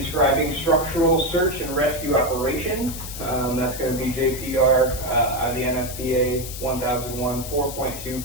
structural search and rescue operations. That's going to be JPR out of the NFPA 1001,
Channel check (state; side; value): noise; left; hiss, 10 dB below the sound